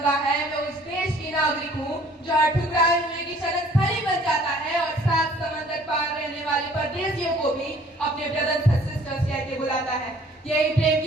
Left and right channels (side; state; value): both; normal; correlation 0.55